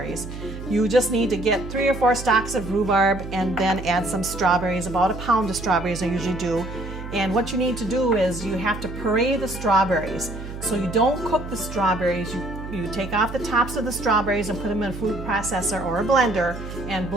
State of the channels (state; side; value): noise; right; hum, 10 dB below the sound